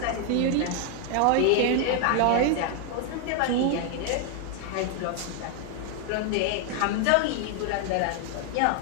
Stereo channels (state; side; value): different; both; correlation 0.00